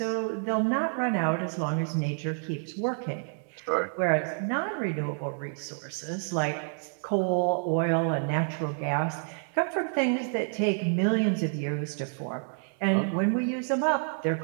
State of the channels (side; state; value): left; silent; 59 dB below the other